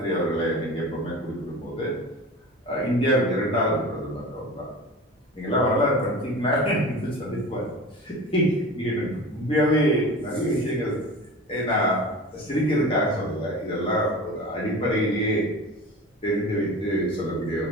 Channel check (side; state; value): both; normal; correlation 0.34